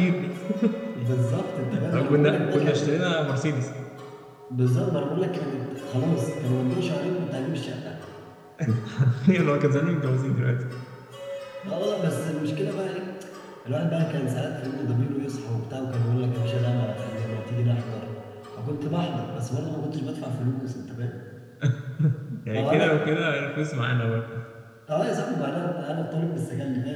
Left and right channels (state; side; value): identical; both; correlation 1.00